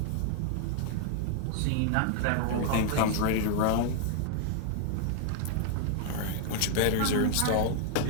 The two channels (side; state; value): both; different; correlation 0.00